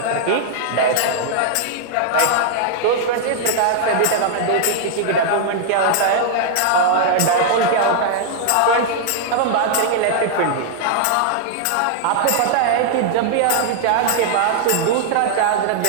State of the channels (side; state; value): both; different; correlation -0.01